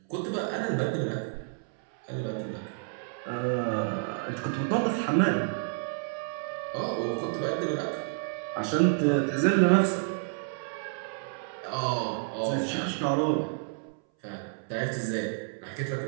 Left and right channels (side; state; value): left; silent; 58 dB below the other